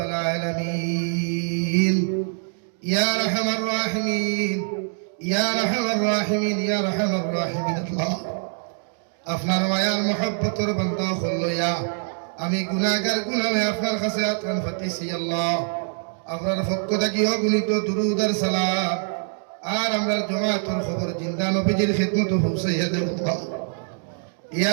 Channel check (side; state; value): left; silent; 62 dB below the other